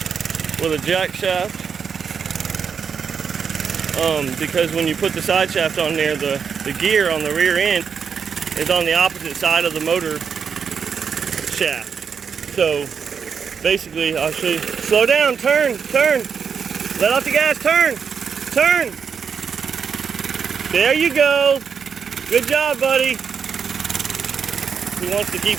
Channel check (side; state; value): left; quieter; 6.6 dB